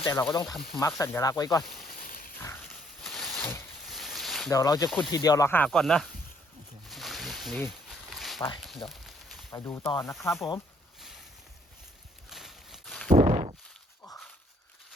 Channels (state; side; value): normal; both; correlation 0.66